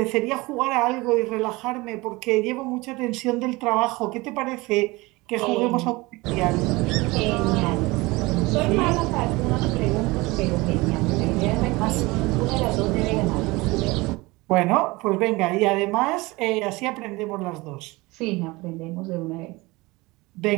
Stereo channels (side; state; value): left; quieter; 22.5 dB